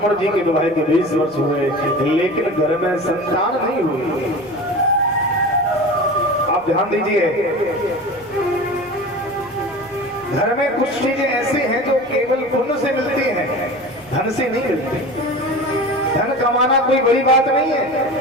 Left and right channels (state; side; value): noise; right; rumble, 26 dB below the sound